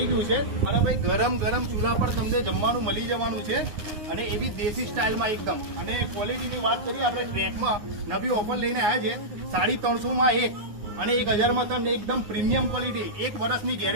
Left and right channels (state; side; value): late; left; 9.7 ms